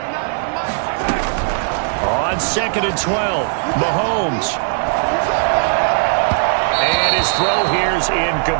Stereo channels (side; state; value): left; silent; 58 dB below the other